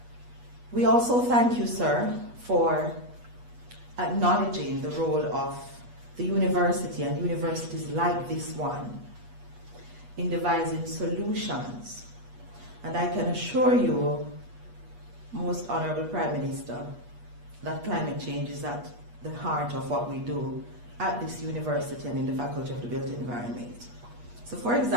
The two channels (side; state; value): left; late; 8.3 ms